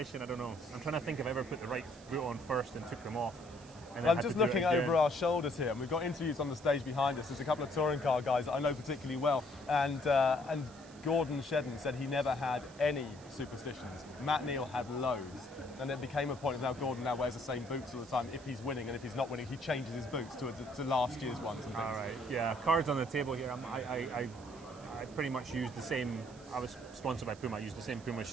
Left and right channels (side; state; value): right; noise; hiss, 22 dB below the sound